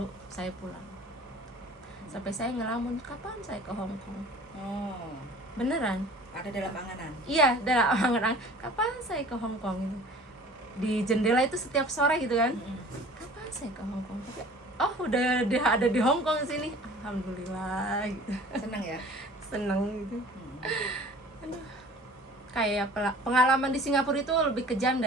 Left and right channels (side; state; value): both; normal; correlation 0.46